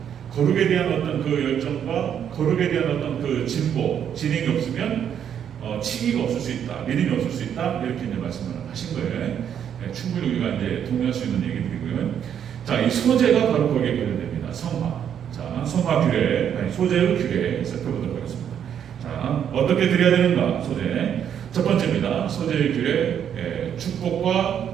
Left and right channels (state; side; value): quieter; left; 8.9 dB